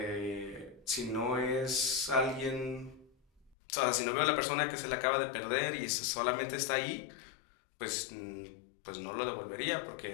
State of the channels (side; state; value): right; drops out; at 3.6 s